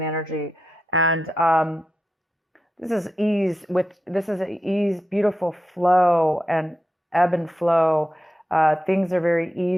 energy, and this is ease. This is ease, beautiful flow and ebb and flow. Things are very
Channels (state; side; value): normal; both; correlation 0.88